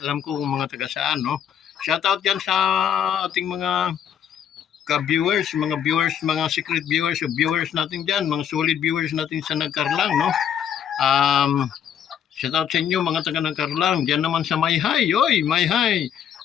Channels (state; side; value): quieter; right; 8.9 dB